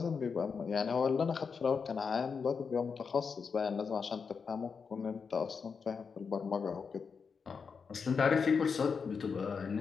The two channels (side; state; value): right; quieter; 5.7 dB